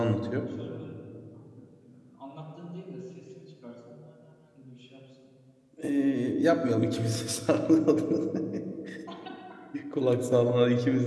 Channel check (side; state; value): both; identical; correlation 1.00